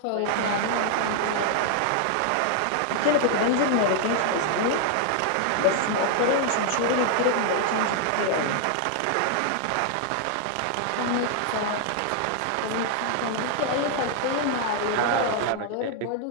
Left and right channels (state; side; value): different; both; correlation 0.00